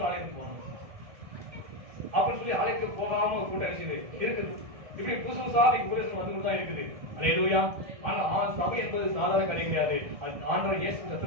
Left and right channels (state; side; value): late; left; 1.7 ms